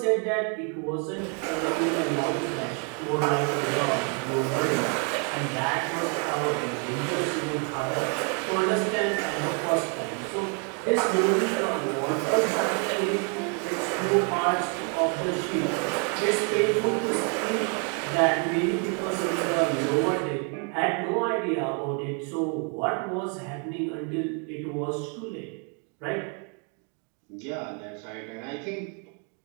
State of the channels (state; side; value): quieter; left; 38.4 dB